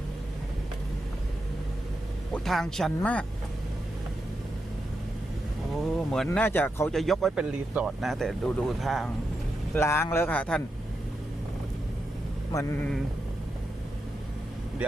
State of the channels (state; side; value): normal; both; correlation 0.86